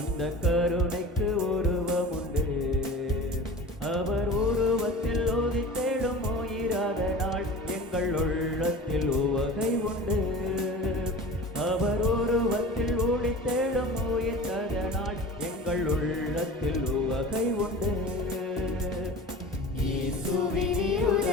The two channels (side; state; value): both; normal; correlation 0.37